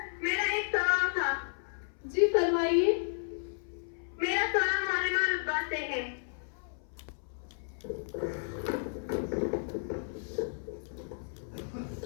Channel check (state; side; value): silent; right; 56 dB below the other